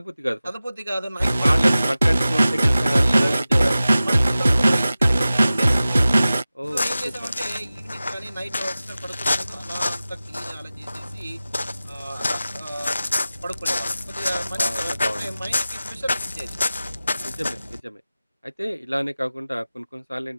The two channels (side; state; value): both; inverted; correlation -0.96